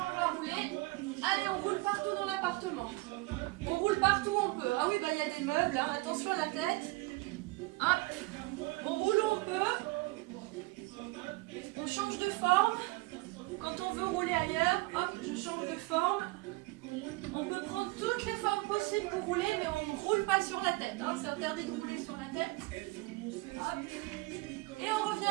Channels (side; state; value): left; quieter; 22.8 dB